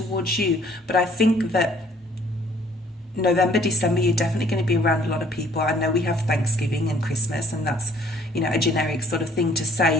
you. But I think that November, December, you're definitely going to be around a lot of people. I know we have Thanksgiving and Christmas, and that's, you know, a generic sort of thing to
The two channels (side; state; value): both; normal; correlation 0.58